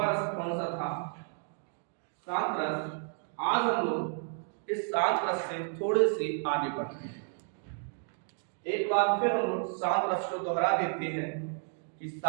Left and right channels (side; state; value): left; silent; 57 dB below the other